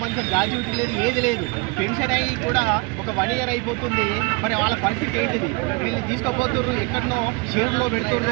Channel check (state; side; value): quieter; left; 29.1 dB